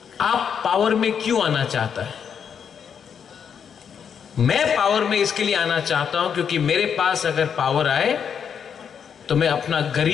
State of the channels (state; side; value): quieter; right; 7.4 dB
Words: आप पावर में क्यों आना चाहता है? मैं पावर में इसके लिए आना चाहता हूं क्योंकि मेरे पास अगर पावर आए तो मैं अपना